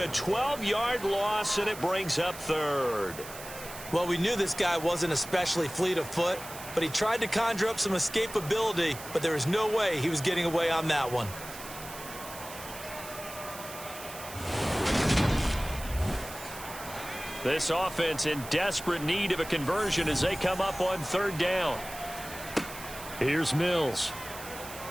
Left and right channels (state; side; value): noise; right; hiss, 13 dB below the sound